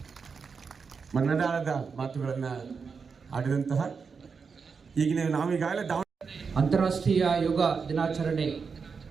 ಮನದಾಳದ ಮಾತುಗಳನ್ನು ಆಡಿದಂತಹ ಈಗಿನ ನಾವೀಗಾಗಲೇ ಅಂತಾರಾಷ್ಟ್ರೀಯ ಯೋಗ ದಿನಾಚರಣೆ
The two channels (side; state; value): left; quieter; 5.5 dB